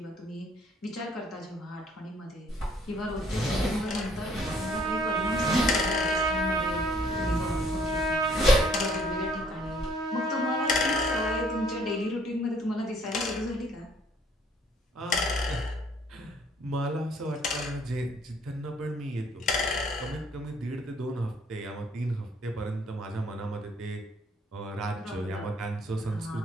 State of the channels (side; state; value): both; normal; correlation 0.62